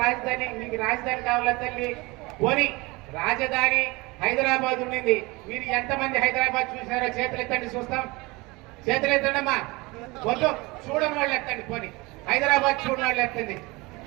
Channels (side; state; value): left; quieter; 23.8 dB